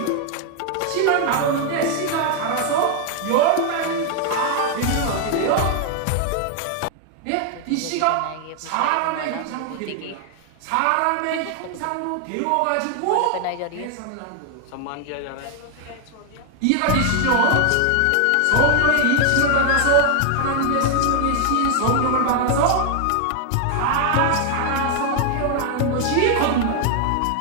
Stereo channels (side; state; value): both; different; correlation 0.00